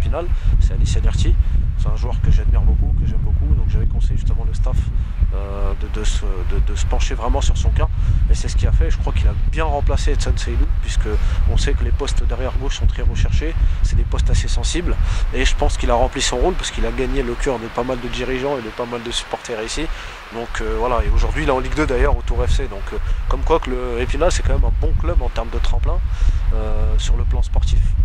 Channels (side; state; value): both; identical; correlation 1.00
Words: c'est Alicia Derti. C'est un joueur que j'admire beaucoup, que j'aime beaucoup, donc j'avais conseillé justement le staff de se pencher vraiment sur son cas. Et c'est ce qu'il a fait. Je crois qu'il a bien remplacé Edson Seydou, puisque on sait que les postes derrière gauche sont très recherchés, c'est des postes assez sensibles, et je pense qu'il a rempli son rôle parce qu'il a gagné le cœur de pas mal de dirigeants et de pas mal de supporters ici. Donc voilà, et aujourd'hui il est en Ligue 2 d'ailleurs au Tour FC, donc comme quoi que le Épinal c'est quand même un bon club en termes de tremplin sur le plan sportif.